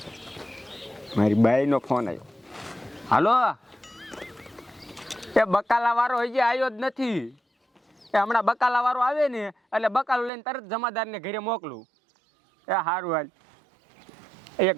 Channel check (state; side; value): drops out; left; at 10.3 s